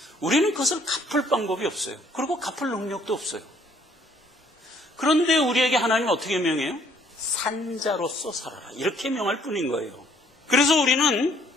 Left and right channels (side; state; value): both; normal; correlation 0.63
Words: 우리는 그것을 갚을 방법이 없어요. 그리고 갚을 능력도 없어요. 그런데 우리에게 하나님은 어떻게 명해요? 산자로서 살아라 이렇게 명할 뿐인 거예요. 그래서 우리는